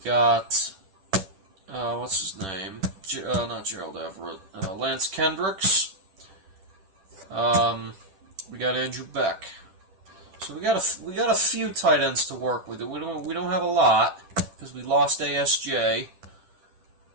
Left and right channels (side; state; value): left; late; 10 ms